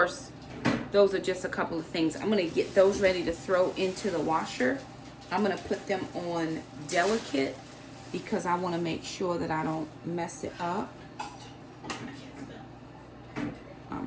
those are just a couple of things. I'm gonna get those ready to throw into the washer. I'm gonna put them on delicate because I wanna make sure that I don't mess it up.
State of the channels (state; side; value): identical; both; correlation 1.00